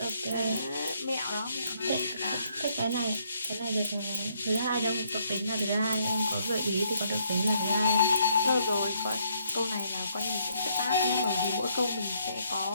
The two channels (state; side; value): inverted; both; correlation -0.71